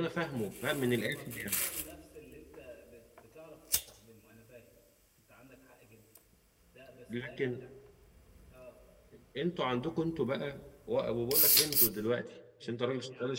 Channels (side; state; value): both; identical; correlation 1.00